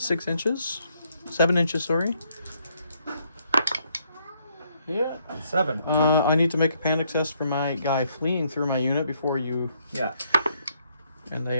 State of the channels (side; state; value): both; inverted; correlation -0.72